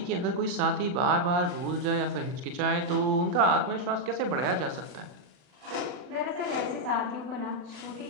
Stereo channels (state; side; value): late; left; 40 ms